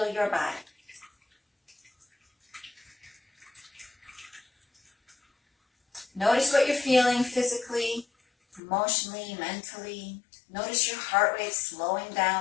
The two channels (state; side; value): drops out; right; at 8.6 s